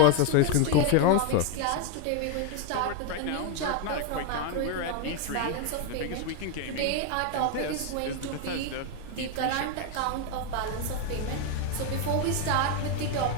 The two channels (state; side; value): different; both; correlation 0.01